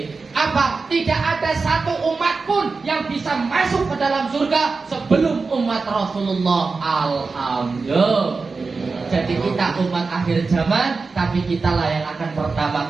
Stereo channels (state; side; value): quieter; left; 4.3 dB